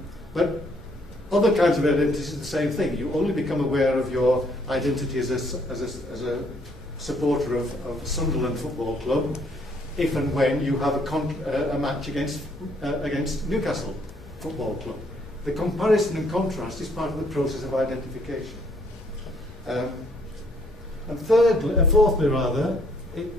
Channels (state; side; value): normal; both; correlation 0.66